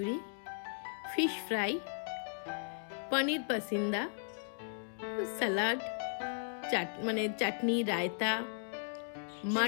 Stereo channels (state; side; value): silent; right; digital silence